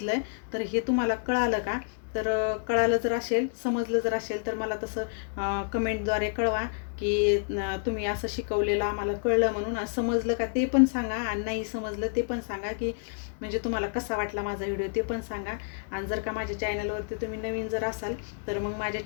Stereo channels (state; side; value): silent; right; 55 dB below the other